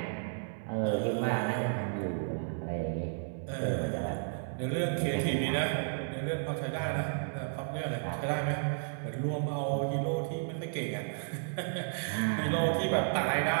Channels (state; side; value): silent; left; 56 dB below the other